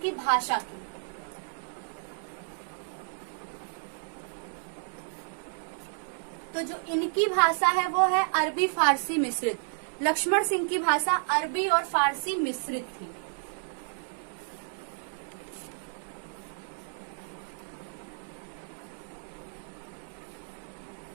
भाषा की। तो जो इनकी भाषा है वो है अरबी फारसी मिश्रित। लक्ष्मण सिंह की भाषा अरबी और फारसी मिश्रित थी।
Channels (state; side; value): silent; left; digital silence